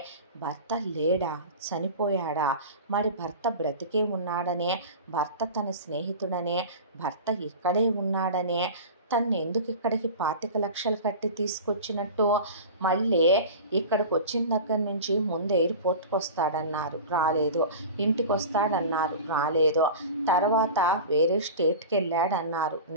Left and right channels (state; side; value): inverted; both; correlation -0.32